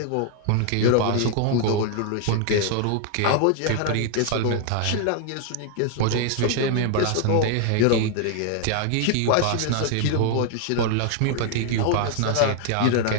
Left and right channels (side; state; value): both; different; correlation 0.00